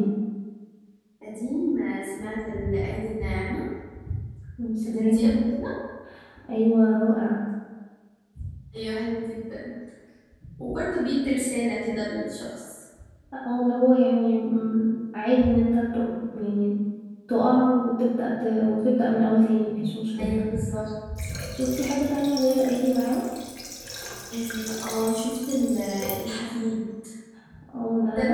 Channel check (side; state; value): both; identical; correlation 1.00